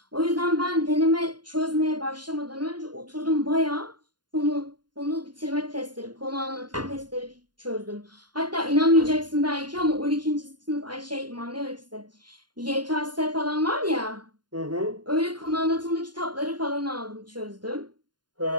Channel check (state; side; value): late; left; 0.71 ms